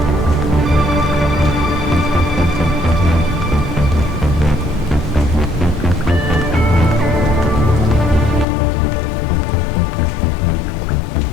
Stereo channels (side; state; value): right; drops out; at 8.5 s